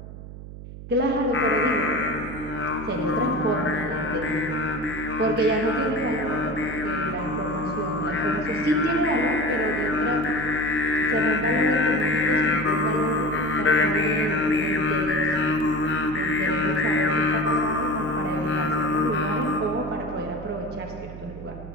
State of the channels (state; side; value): noise; right; hum, 13 dB below the sound